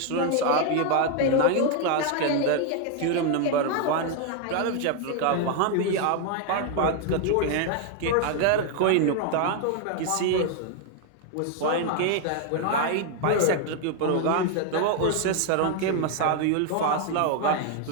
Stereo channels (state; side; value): different; both; correlation 0.01